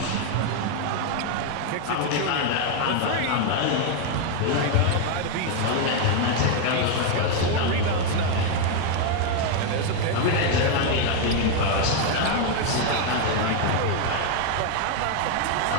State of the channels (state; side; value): different; both; correlation 0.01